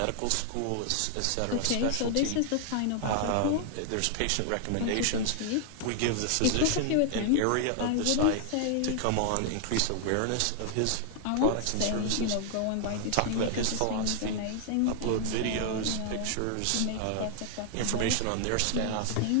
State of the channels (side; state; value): both; different; correlation 0.00